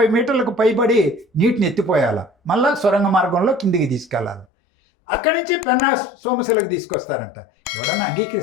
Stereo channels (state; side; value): drops out; right; at 4.5 s